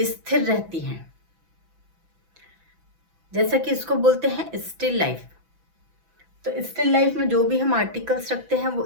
रहती हैं, जैसा कि इसको बोलते हैं स्टिल लाइफ। तो स्टिल लाइफ में जो भी हम आर्टिकल्स रखते हैं वो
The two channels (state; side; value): late; left; 6.0 ms